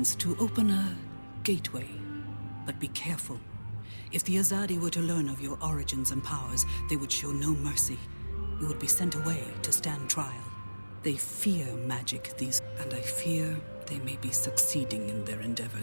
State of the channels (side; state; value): both; inverted; correlation -1.00